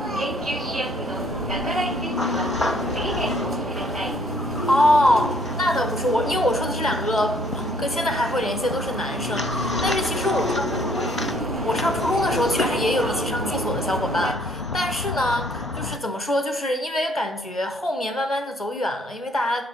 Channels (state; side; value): normal; both; correlation 0.63